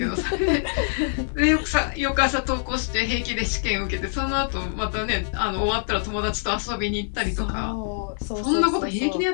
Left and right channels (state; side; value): silent; right; digital silence